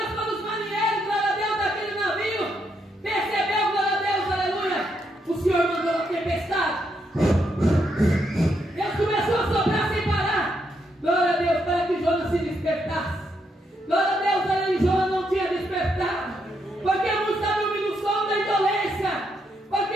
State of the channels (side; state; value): both; normal; correlation 0.78